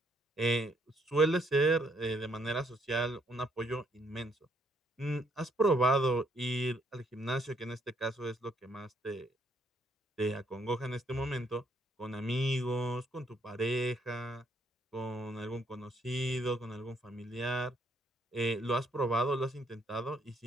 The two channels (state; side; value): normal; both; correlation 0.70